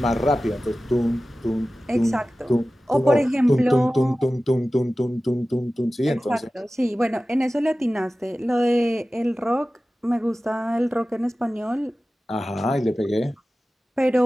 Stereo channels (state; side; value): normal; both; correlation 0.96